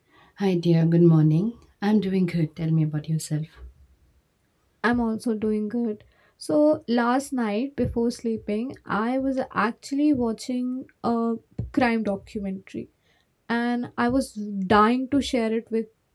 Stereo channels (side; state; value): both; identical; correlation 1.00